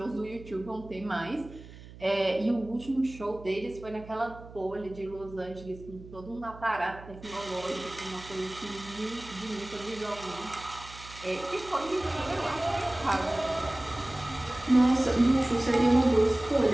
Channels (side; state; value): right; noise; hum, 17 dB below the sound